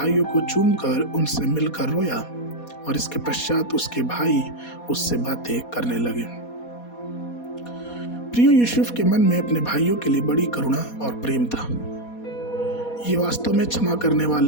को चूमकर उनसे मिलकर रोया और इसके पश्चात उसके भाई उससे बातें करने लगे। प्रियो, यूसुफ के मन में अपने भाइयों के लिए बड़ी करुणा और प्रेम था। ये वास्तव में क्षमा करने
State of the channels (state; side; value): late; right; 4.2 ms